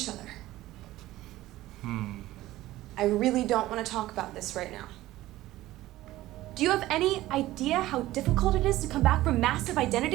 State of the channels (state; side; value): quieter; left; 16.2 dB